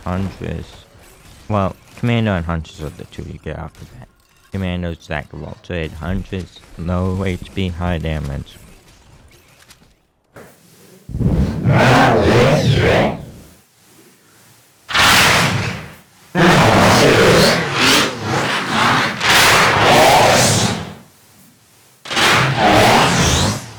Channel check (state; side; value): identical; both; correlation 1.00